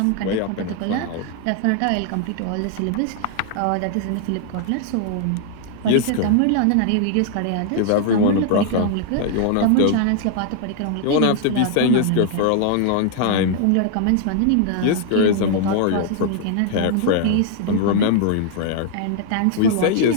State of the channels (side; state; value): both; different; correlation 0.00